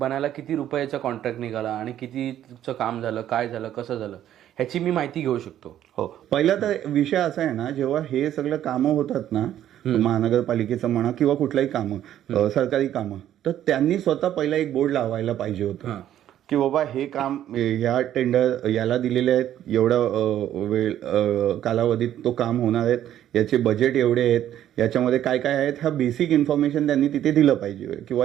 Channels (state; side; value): quieter; left; 11.5 dB